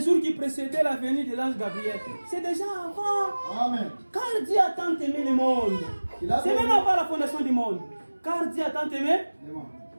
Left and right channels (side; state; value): both; inverted; correlation -1.00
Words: jours qui précédaient la venue de l'ange Gabriel. C'est déjà avant. Amen. Car Dieu a tant aimé le monde. C'est même avant la fondation du monde. Car Dieu a tant aimé le monde.